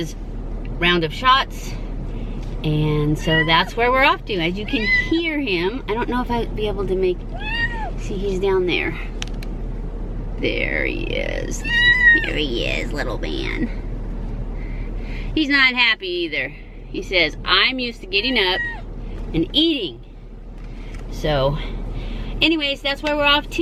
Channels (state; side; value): identical; both; correlation 1.00